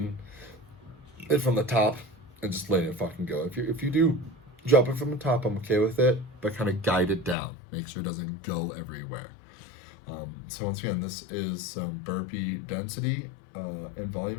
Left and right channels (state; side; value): drops out; right; at 7.4 s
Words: it from the top and just letting it fucking go. If you do drop it from the top, I'm okay with it, but kind of guide it down. Make sure it doesn't go everywhere. So once again, this is burpee density and